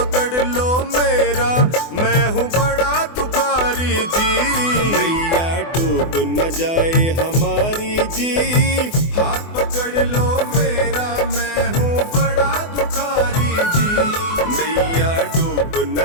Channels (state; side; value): late; right; 24 ms